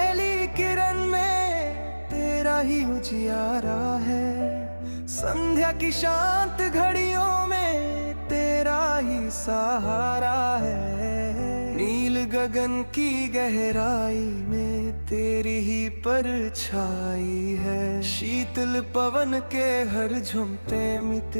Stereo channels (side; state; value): both; inverted; correlation -1.00